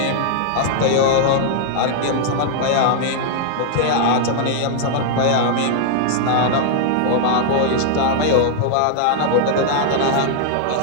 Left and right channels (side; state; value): both; different; correlation 0.00